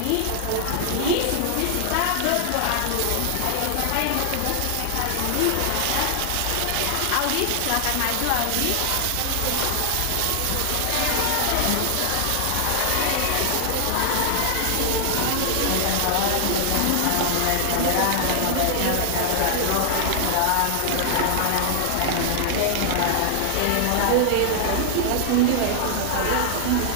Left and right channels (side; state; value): both; different; correlation 0.00